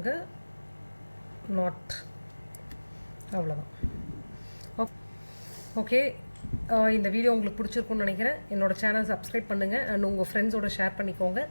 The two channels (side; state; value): both; inverted; correlation -1.00